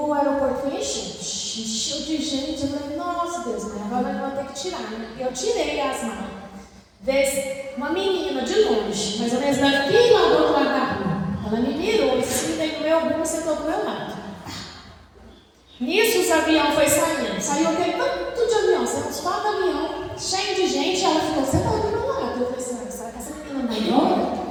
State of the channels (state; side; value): identical; both; correlation 1.00